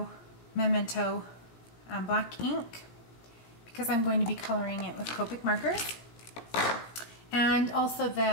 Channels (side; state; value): right; late; 17 ms